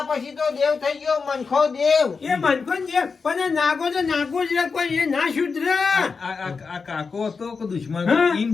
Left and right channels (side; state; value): right; quieter; 5.0 dB